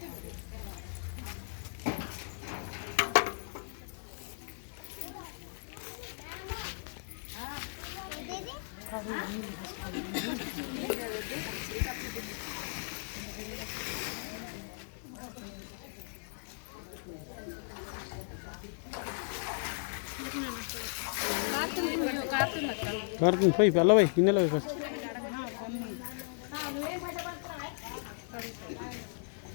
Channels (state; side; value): silent; right; digital silence